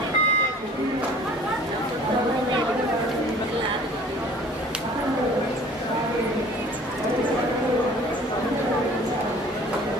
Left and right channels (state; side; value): normal; both; correlation 0.49